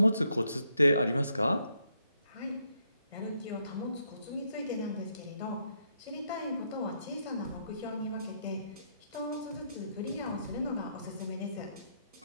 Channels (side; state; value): both; inverted; correlation -0.76